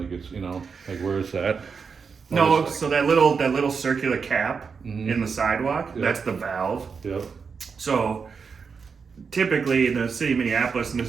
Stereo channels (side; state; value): left; quieter; 5.6 dB